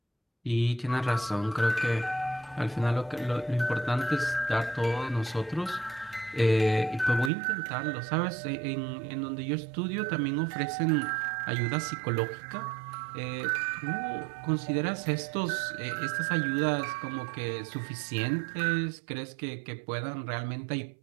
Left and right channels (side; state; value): left; drops out; at 7.3 s